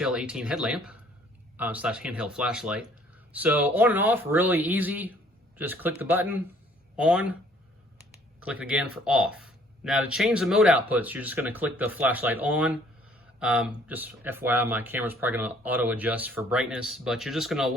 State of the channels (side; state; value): both; normal; correlation 0.59